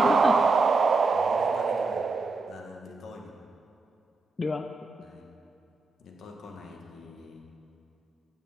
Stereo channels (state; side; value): quieter; left; 3.8 dB